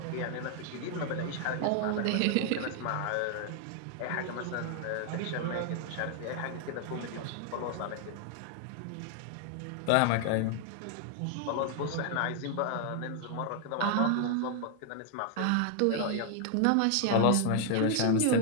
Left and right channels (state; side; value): different; both; correlation 0.00